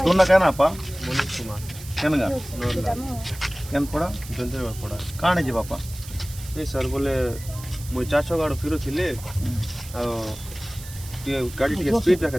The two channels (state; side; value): noise; right; hiss, 15 dB below the sound